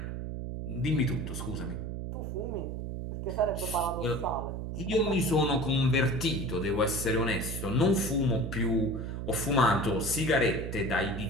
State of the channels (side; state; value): right; noise; hum, 5 dB below the sound